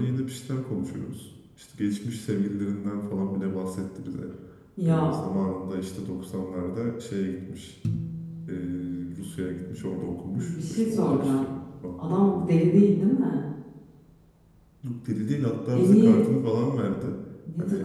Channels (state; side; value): identical; both; correlation 1.00